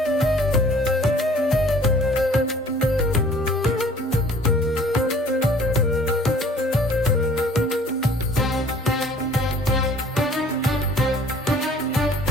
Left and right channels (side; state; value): both; normal; correlation 0.52